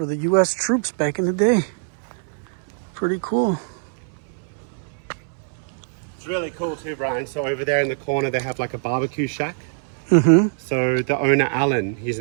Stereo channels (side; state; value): left; silent; 63 dB below the other